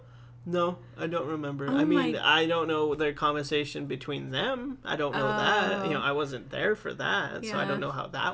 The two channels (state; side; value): identical; both; correlation 1.00